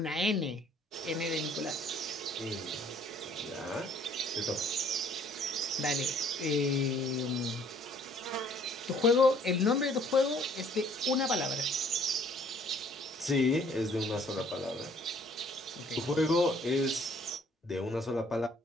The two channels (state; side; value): normal; both; correlation 0.59